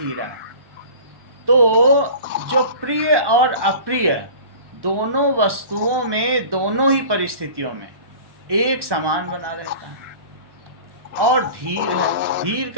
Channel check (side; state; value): left; late; 1.2 ms